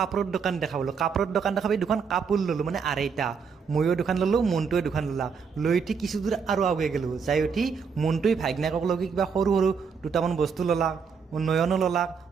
দোকান দেখা পালোঁ কাপোৰৰ দোকান দেখা পাই দুখন কাপোৰ ল'লোঁ মানে আঢ়ৈটা ময়ো দোকান ল'লোঁ মনটোৱে দোকান ল'লা লৈ উঠি কিছু দূৰ আৰু আউগে গেলোঁ যাই উঠি মনটোৱে ভাইগনাকক লগি কিবা সৰু সৰু দুটামান বস্তু ল'লা নয়নো ল'লাক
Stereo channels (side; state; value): left; quieter; 5.9 dB